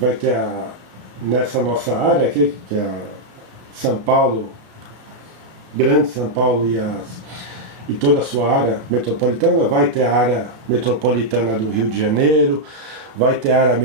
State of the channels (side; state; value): left; late; 33 ms